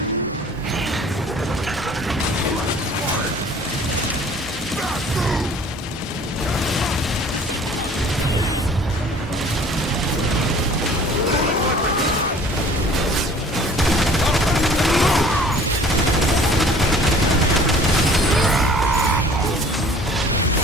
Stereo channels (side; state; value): both; normal; correlation 0.50